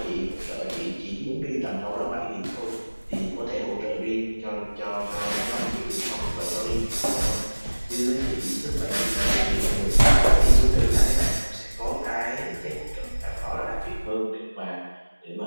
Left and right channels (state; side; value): inverted; both; correlation -1.00